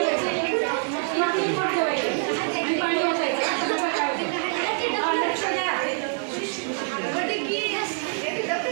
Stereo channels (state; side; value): silent; left; 57 dB below the other